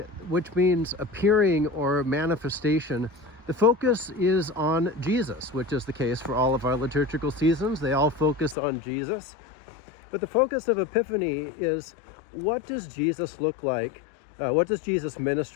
which means appearing or manifestation, the focus is on Jesus, which is the case for all of our liturgical seasons. They all focus on Jesus. But the focus of Epiphany is, what does Jesus look like? What does Jesus'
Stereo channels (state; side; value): drops out; right; at 8.6 s